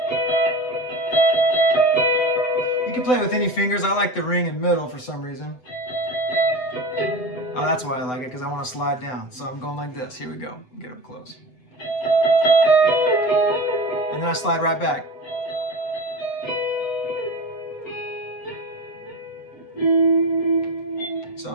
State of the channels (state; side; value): late; right; 8.0 ms